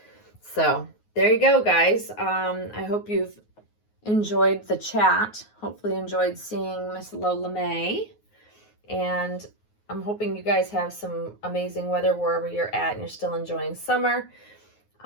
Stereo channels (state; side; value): late; right; 9.5 ms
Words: So there you go, guys. I hope you've enjoyed the chat. Hopefully enjoyed seeing Miss Lola May, and I'm hoping you guys have some amazing weather wherever you're at and you're still enjoying summer.